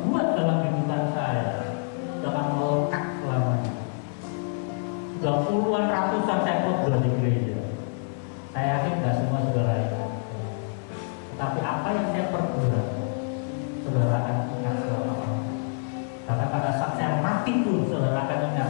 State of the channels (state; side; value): silent; right; digital silence